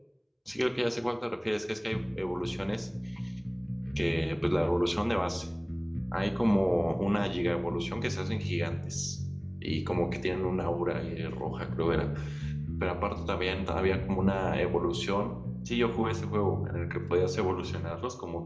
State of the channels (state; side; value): identical; both; correlation 1.00